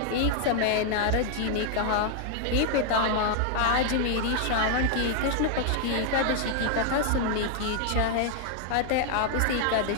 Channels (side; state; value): both; different; correlation 0.00